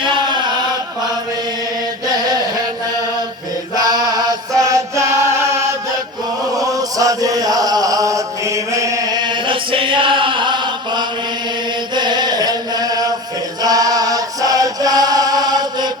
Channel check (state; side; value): normal; both; correlation 0.31